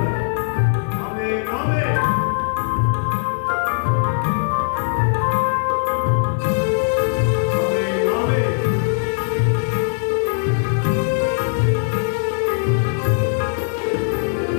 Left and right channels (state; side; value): silent; right; digital silence